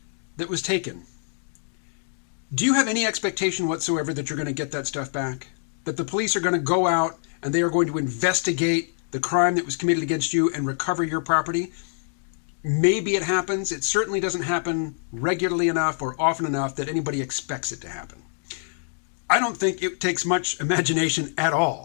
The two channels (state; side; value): silent; right; digital silence